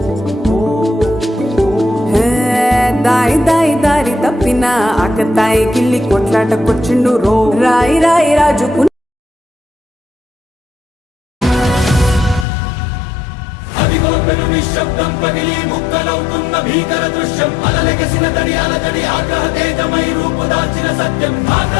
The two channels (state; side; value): drops out; right; at 12.5 s